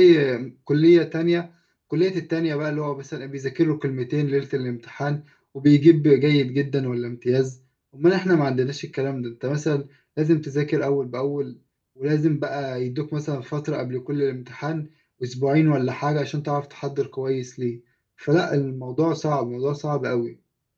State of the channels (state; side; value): identical; both; correlation 1.00